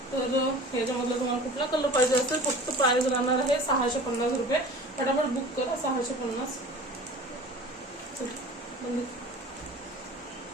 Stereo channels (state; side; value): normal; both; correlation 0.41